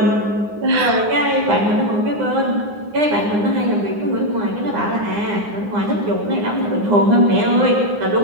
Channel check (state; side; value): late; left; 9.7 ms